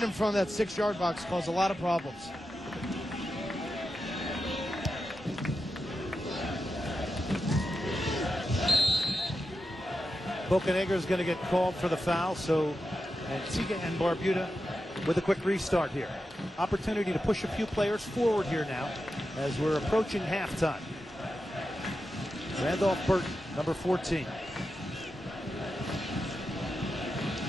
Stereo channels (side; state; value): both; normal; correlation 0.90